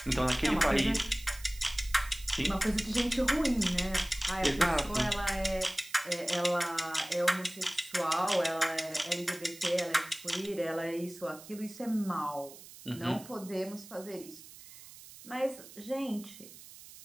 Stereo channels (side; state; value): right; noise; hiss, 17 dB below the sound